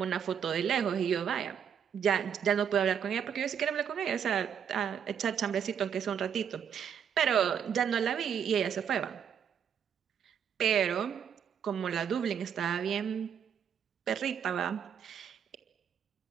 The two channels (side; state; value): left; quieter; 7.9 dB